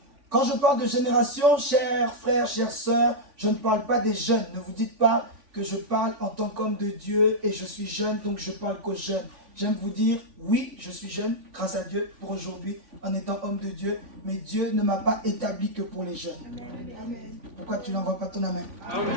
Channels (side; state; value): left; late; 3.5 ms